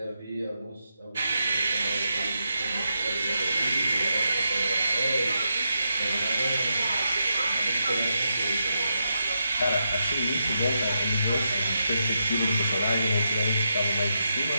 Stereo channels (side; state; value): both; inverted; correlation -0.85